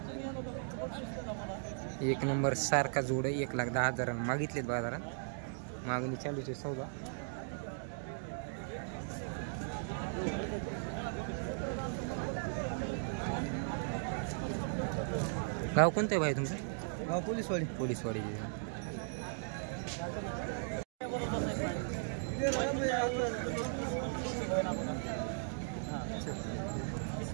एक नंबर सारखा जोड आहे. 1,10,000 मागितलेत बाजारात. मागणी चालूच आहे सौदा. गाव कोणतं आहे भाई तुमचं? गाव पोलीसवाडी. पोलीसवाडी.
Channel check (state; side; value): silent; left; digital silence